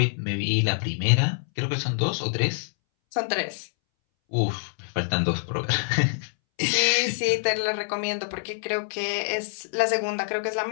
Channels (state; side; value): silent; right; 61 dB below the other